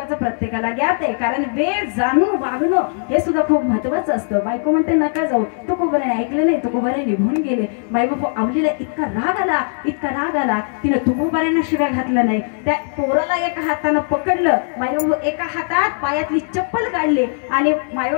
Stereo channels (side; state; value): right; silent; digital silence